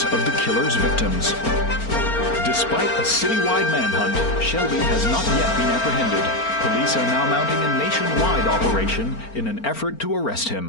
of the killer's victims. Despite a citywide manhunt, Shelby has not yet been apprehended. Police are now mounting a nationwide operation in an effort to arrest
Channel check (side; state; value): right; late; 4.4 ms